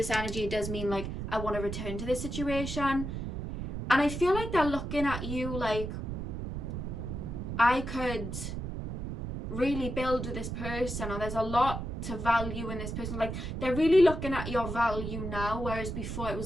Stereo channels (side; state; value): right; noise; rumble, 5 dB below the sound